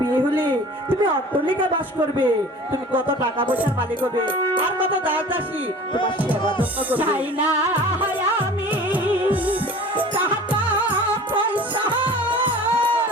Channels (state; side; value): normal; both; correlation 0.43